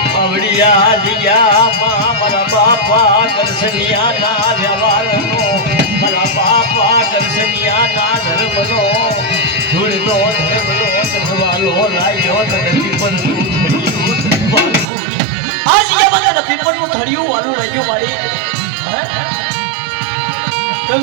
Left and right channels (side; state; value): left; drops out; at 14.9 s